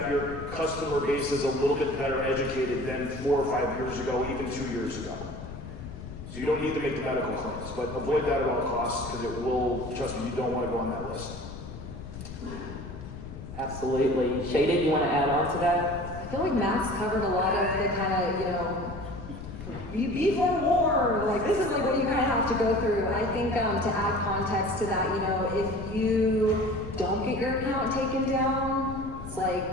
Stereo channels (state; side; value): noise; left; rumble, 11 dB below the sound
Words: your customer base is a little bit better educated than 4 or 5 years ago, even 2 years ago. So you don't need to make the medical claims, but avoid that at all costs because it will, trust me, you don't want to go on that list. Absolutely. Shaded, you want to add on to that? I feel like Max covered a lot of the kind of, you be for war, like this is like what you kind of have to go through. I think to add context to that, if you don't get your account taken down, it's